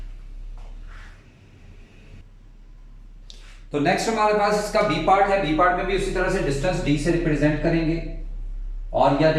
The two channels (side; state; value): both; identical; correlation 1.00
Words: तो नेक्स्ट हमारे पास इसका बी पार्ट है। बी पार्ट में भी उसी तरह से डिस्टेंस डी से रिप्रेजेंट करेंगे और यह